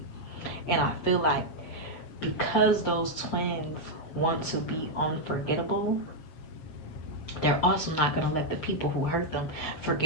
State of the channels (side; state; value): right; late; 6.5 ms